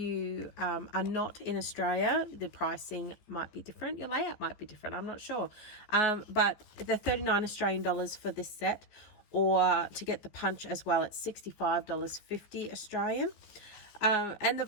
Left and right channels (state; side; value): late; right; 15 ms